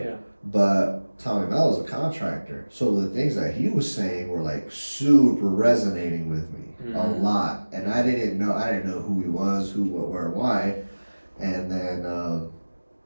Yeah. But Tommy Mello's a contractor, so the things that he was saying were like super resonating with me a lot, and I didn't know who he was, who, what, where, why, and then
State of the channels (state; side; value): inverted; both; correlation -1.00